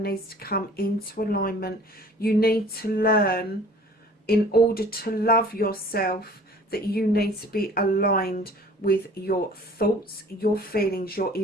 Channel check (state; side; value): normal; both; correlation 0.49